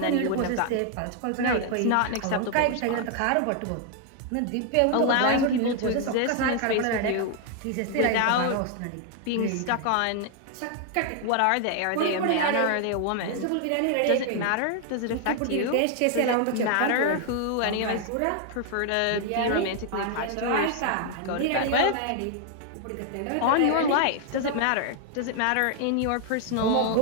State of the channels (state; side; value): different; both; correlation 0.00